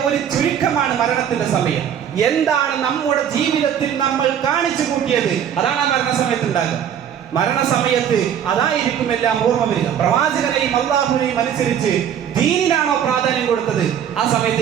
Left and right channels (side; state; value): left; quieter; 9.1 dB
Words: ഒരു ചുരുക്കമാണ് മരണത്തിന്റെ സമയം. എന്താണ് നമ്മുടെ ജീവിതത്തിൽ നമ്മൾ കാണിച്ചു കൂട്ടിയത്, അതാണ് ആ മരണസമയത്ത് ഉണ്ടാകുക. മരണസമയത്ത് അതായിരിക്കും എല്ലാം ഓർമ്മ വരിക. പ്രവാചകനെയും അള്ളാഹുവിനെയും അനുസരിച്ച് ദീനിനാണോ പ്രാധാന്യം കൊടുത്തത്, ആ